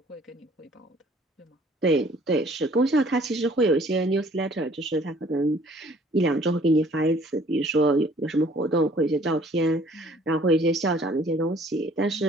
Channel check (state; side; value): normal; both; correlation 0.56